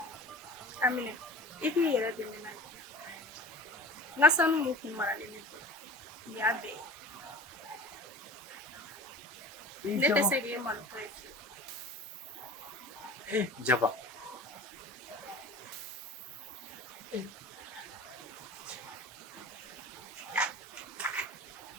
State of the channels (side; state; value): both; normal; correlation 0.37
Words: A minɛ. I k'i yɛrɛ dɛmɛ n'a ye. N ka sanu mun kun maralen ne bolo. Nin y'a bɛɛ ye. Ne tɛ se k'e malotɔ ye fiyewu. Jaba.